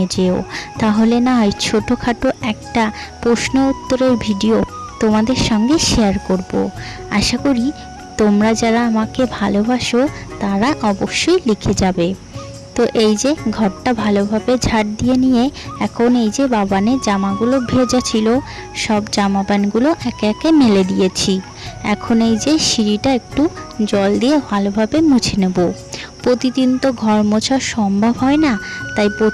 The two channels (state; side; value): identical; both; correlation 1.00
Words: যেও। তাহলে না হয় ছোটোখাটো একটা প্রশ্ন উত্তরের ভিডিও তোমাদের সঙ্গে শেয়ার করব। আশা করি তোমরা যারা আমাকে ভালোবাসো তারা অবশ্যই লিখে যাবে। তো এই যে ঘরটা ভালোভাবে ঝাড় দিয়ে নিয়ে এখন এই যে বাবানের জামাগুলো ভেজা ছিল, সব জামা প্যান্টগুলো একে একে মেলে দিয়েছি। এখন এই যে সিঁড়িটা একটু জল দিয়ে ভালোভাবে মুছে নেব। প্রতিদিন তো ঘর মোছা সম্ভব হয় না, তাই